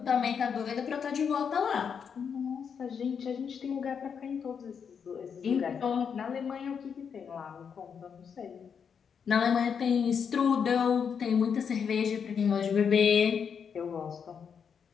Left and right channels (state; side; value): quieter; right; 6.9 dB